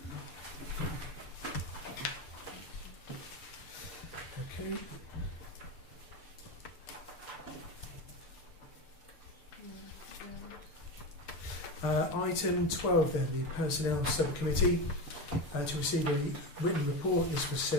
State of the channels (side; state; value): right; late; 6.8 ms